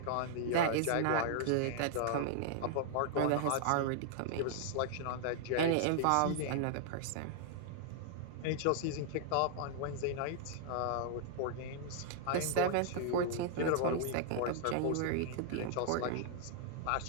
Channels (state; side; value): different; both; correlation -0.01